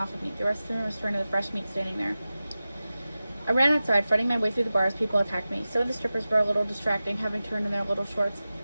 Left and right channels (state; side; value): inverted; both; correlation -0.95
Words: of me. The rest of the room was turned to the fresh meat standing there. I ran outside, fighting my way through the bar as people attacked me. Some of the strippers were a little distracting, having turned in their little shorts.